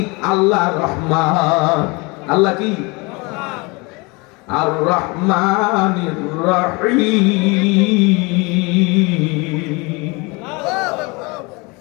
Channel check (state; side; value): quieter; right; 27.2 dB